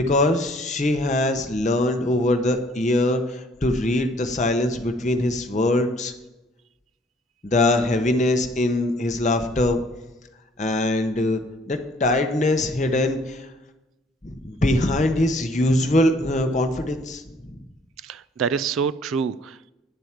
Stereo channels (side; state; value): both; normal; correlation 0.60